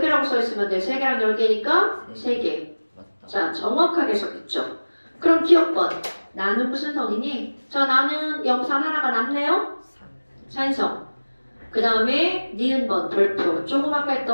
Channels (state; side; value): inverted; both; correlation -1.00